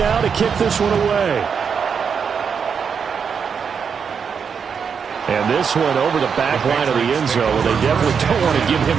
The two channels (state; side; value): quieter; left; 6.5 dB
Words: to kick this one away. And this one over the back line of the end zone. They definitely don't want to give him